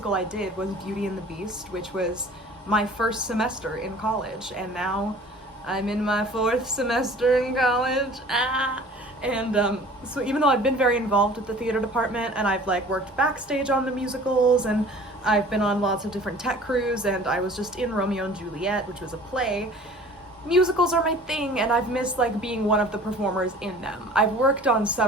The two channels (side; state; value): both; normal; correlation 0.47